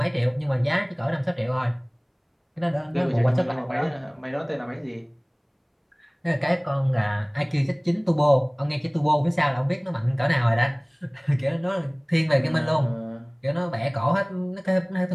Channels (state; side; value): identical; both; correlation 1.00